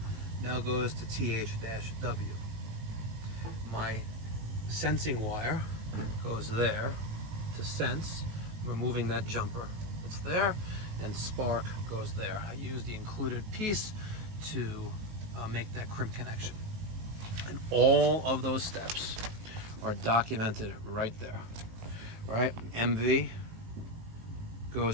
now goes to TH-W. My sensing wire goes there to sense, removing that jumper that's there, and spark goes there. I use the included piece to make that crimp connection. And all of those steps are documented right there, right? MV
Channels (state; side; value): late; left; 19 ms